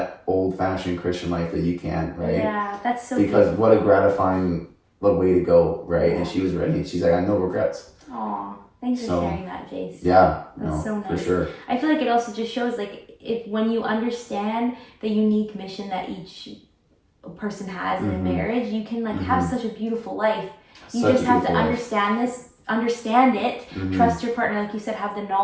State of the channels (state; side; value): identical; both; correlation 1.00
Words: old-fashioned Christian life that you can, right? Yeah, that's so because beautiful. what a gratifying way to go, right? And she was ready, and she's like, I have no regrets. Aw, thanks for sharing that, Jace. Yeah, that's so nice. For sure. I feel like it also just shows, like, when you understand the unique mission that each person has in a marriage, you can, like, have such a beautiful life. You just have to understand it, trust your partner, like you said, have the